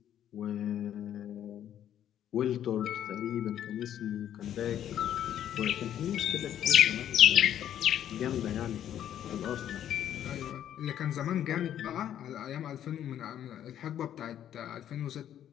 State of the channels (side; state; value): right; quieter; 10.6 dB